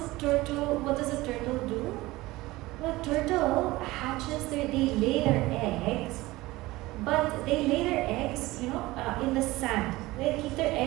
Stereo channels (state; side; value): quieter; left; 19.4 dB